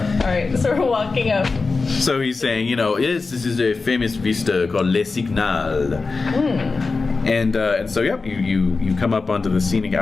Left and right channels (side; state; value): right; quieter; 4.1 dB